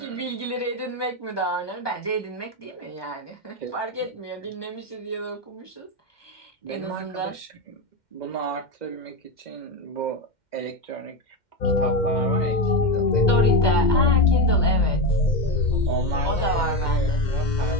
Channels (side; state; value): right; late; 2.1 ms